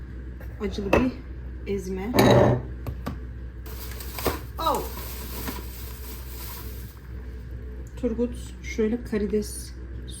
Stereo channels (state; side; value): identical; both; correlation 1.00